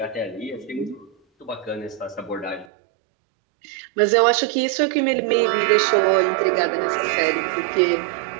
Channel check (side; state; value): left; drops out; at 2.7 s